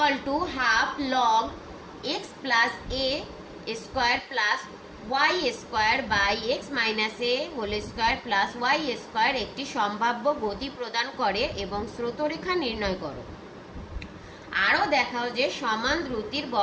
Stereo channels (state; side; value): identical; both; correlation 1.00